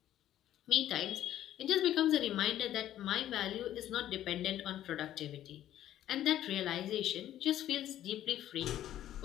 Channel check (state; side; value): quieter; right; 12.3 dB